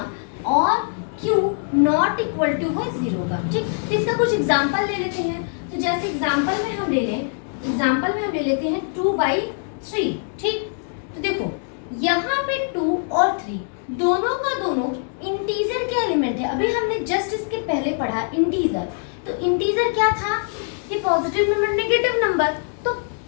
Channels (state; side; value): silent; right; 64 dB below the other